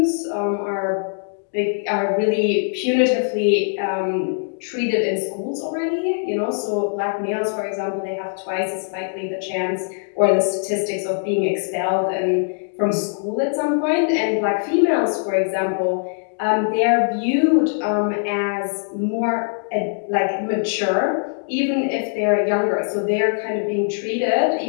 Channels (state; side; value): silent; right; digital silence